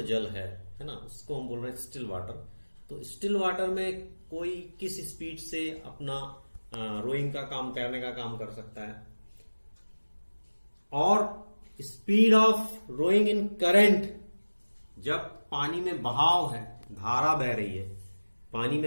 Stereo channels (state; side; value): inverted; both; correlation -1.00